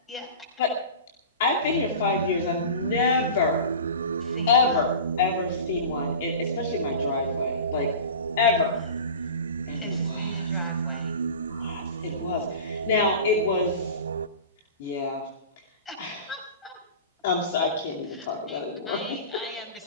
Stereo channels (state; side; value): inverted; both; correlation -0.35